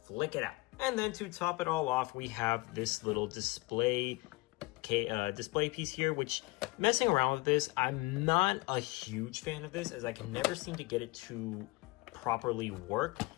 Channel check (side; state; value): right; quieter; 23.1 dB